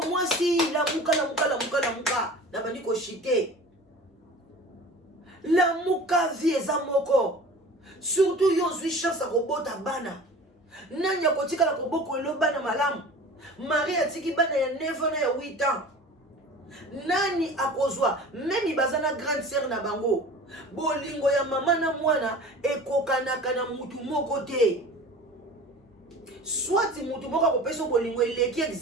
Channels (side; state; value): both; normal; correlation 0.40